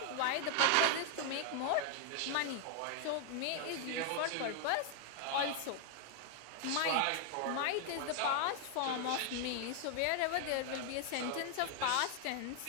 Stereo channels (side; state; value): both; different; correlation 0.00